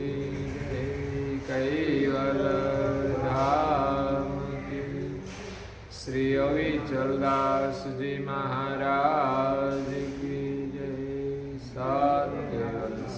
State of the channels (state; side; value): identical; both; correlation 1.00